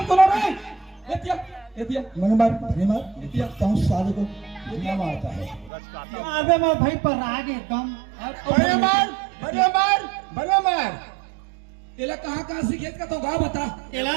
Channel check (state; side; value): drops out; left; at 5.7 s